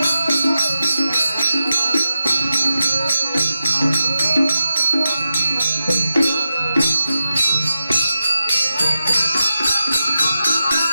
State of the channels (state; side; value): inverted; both; correlation -0.91